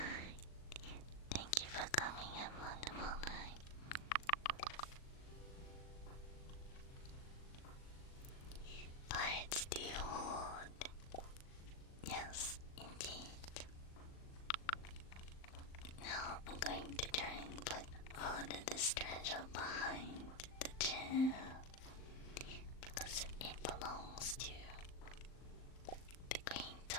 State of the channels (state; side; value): late; right; 39 ms